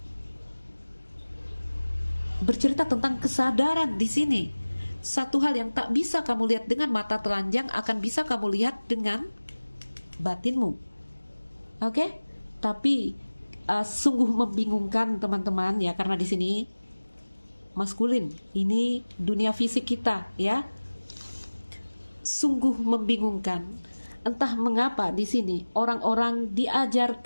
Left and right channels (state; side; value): inverted; both; correlation -1.00